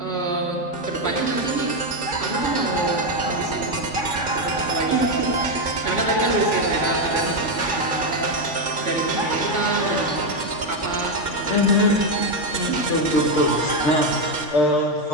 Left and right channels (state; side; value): late; right; 3.5 ms